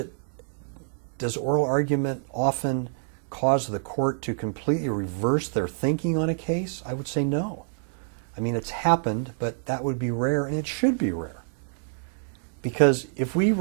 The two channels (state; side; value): silent; left; 60 dB below the other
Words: oral argument often cause the court to completely reverse their thinking on a case? I would say no. I mean, it's happened, but that would be rare, and it should be rare. Because if we